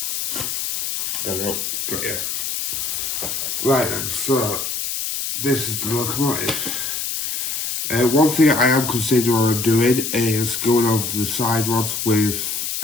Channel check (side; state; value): left; noise; hiss, 2 dB below the sound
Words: There we go. Got you. Right then, so this is the locomotive. One thing I am considering on doing is going over the side rods with